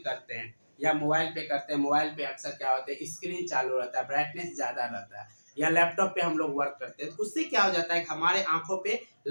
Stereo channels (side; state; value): both; inverted; correlation -1.00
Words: करते हैं या मोबाइल पे करते हैं, मोबाइल पे अक्सर क्या होता है स्क्रीन चालू रहता है, ब्राइटनेस ज्यादा रहता है, या लैपटॉप पे हम लोग वर्क करते हैं, तो उससे क्या हो जाता है कि हमारे आंखों पे